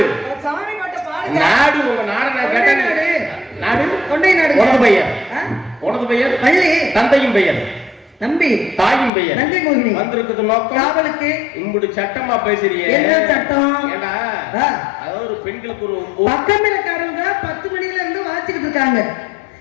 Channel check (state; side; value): drops out; right; at 9.1 s